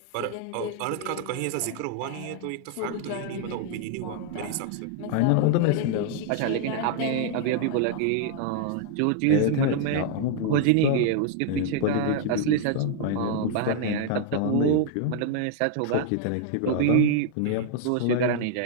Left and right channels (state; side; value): different; both; correlation -0.01